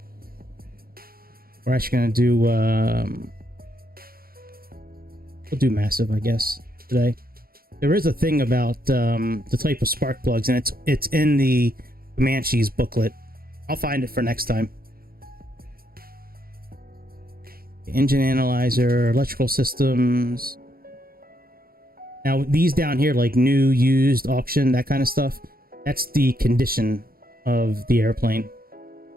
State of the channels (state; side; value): late; left; 0.43 ms